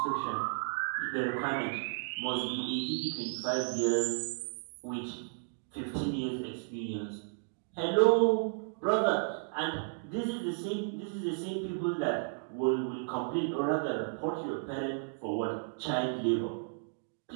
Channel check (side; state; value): left; silent; digital silence